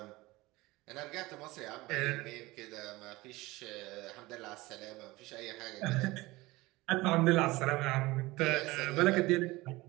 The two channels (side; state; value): left; quieter; 20.6 dB